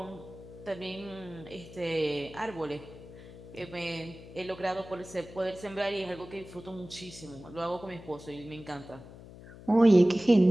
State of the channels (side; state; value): left; noise; hum, 17 dB below the sound